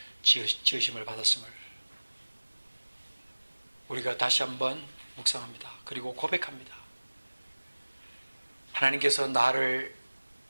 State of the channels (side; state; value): both; inverted; correlation -1.00